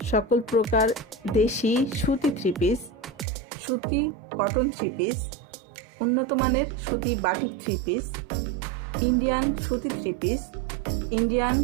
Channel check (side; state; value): left; drops out; at 3.2 s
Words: সকল প্রকার দেশি সুতি থ্রি পিস, সুতি কটন থ্রি পিস, উন্নত মানের সুতি বাটিক থ্রি পিস, ইন্ডিয়ান সুতি থ্রি পিস, ইন্ডিয়ান